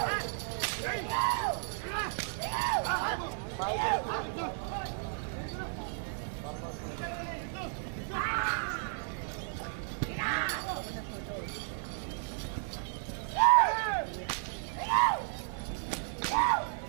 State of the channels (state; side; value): silent; left; 55 dB below the other